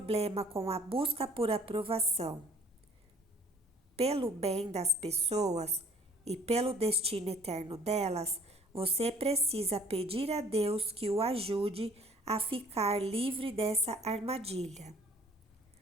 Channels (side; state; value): both; normal; correlation 0.55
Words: com a busca por aprovação. Pelo bem das pessoas e pelo destino eterno delas, você precisa pedir a Deus que o ajude a ficar livre dessa armadilha.